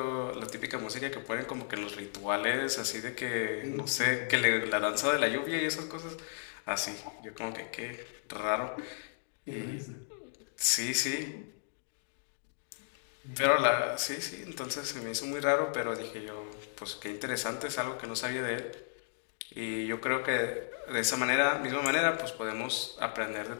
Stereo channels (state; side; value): silent; right; digital silence